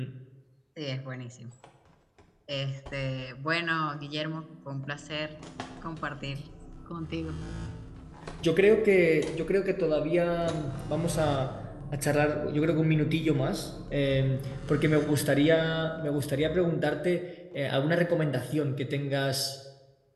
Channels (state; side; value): identical; both; correlation 1.00